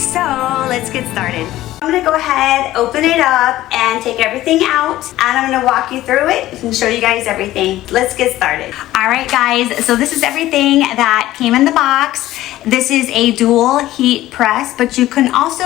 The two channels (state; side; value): quieter; right; 15.2 dB